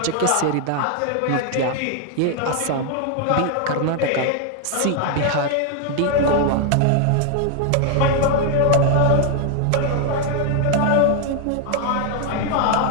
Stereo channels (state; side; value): different; both; correlation 0.00